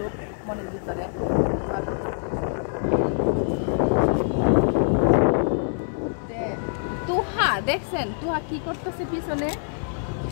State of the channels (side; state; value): right; silent; 62 dB below the other